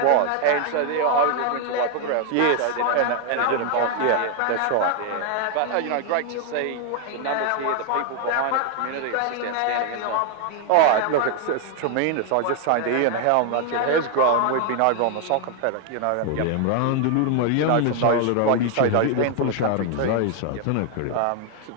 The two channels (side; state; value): both; different; correlation 0.00